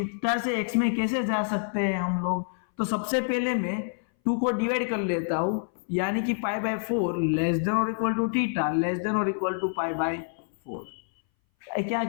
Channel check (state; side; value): silent; right; 59 dB below the other